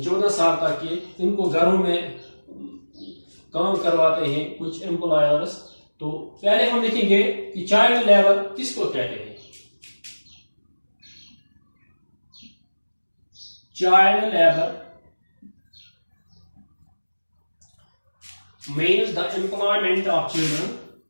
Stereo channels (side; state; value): both; inverted; correlation -1.00